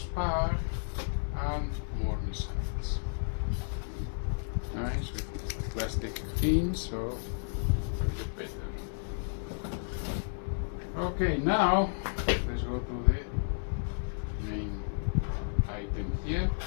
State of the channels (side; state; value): right; silent; digital silence